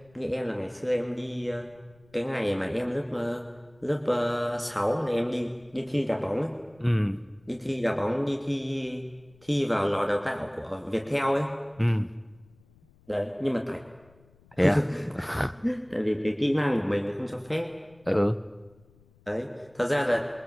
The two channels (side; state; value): left; noise; rumble, 29 dB below the sound